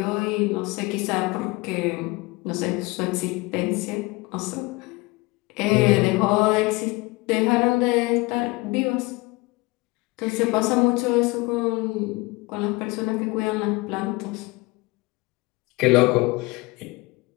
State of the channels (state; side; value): quieter; right; 24.0 dB